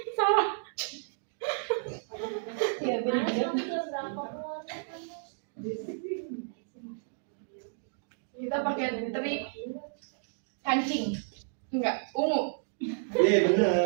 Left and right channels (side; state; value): left; silent; digital silence